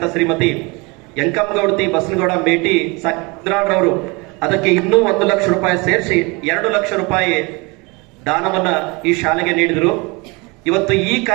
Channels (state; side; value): quieter; left; 27.3 dB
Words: ಶ್ರೀಮತಿ ಯಂಕಮ್ಮಗೌಡತಿ ಬಸನಗೌಡ ಮೇಟಿ ಸಾಕಿದ್ರಾಡ್ರವರು ಅದಕ್ಕೆ ಇನ್ನೂ 1 ಲಕ್ಷ ರೂಪಾಯಿ ಸೇರಿಸಿ 2 ಲಕ್ಷ ರೂಪಾಯಿ ದಾನವನ್ನ ಈ ಶಾಲೆಗೆ ನೀಡಿದರು. ಇವತ್ತು ಈ